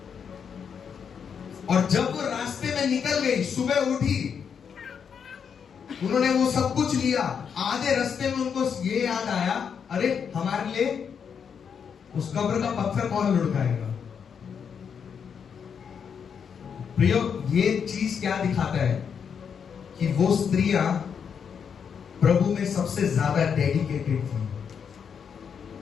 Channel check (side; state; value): right; quieter; 7.0 dB